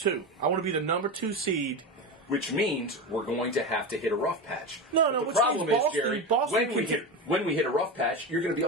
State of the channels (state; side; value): normal; both; correlation 0.21